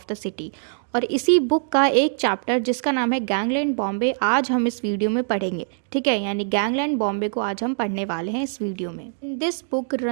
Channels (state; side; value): silent; left; digital silence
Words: the city, और इसी बुक का एक चैप्टर जिसका नाम है गैंगलैंड बॉम्बे आज हम इस वीडियो में पढ़ेंगे। ठीक है, यानी गैंगलैंड बॉम्बे को आज हम पढ़ने वाले हैं इस वीडियो में। In this book